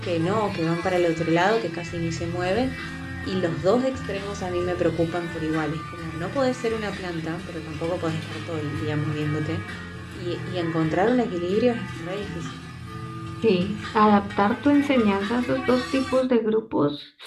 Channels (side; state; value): both; identical; correlation 1.00